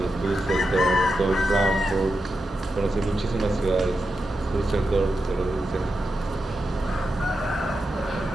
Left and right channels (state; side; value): normal; both; correlation 0.88